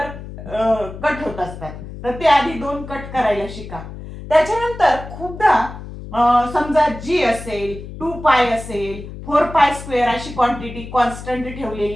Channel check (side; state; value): left; noise; hum, 12 dB below the sound